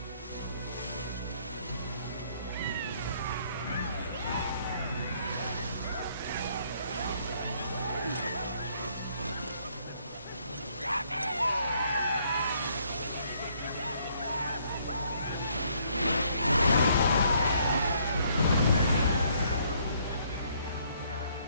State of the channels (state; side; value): inverted; both; correlation -0.66